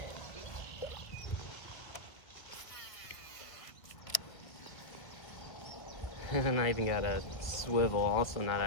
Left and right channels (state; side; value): late; right; 1.8 ms